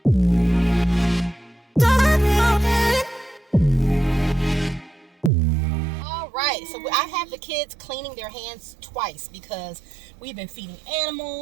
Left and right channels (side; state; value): left; drops out; at 5.3 s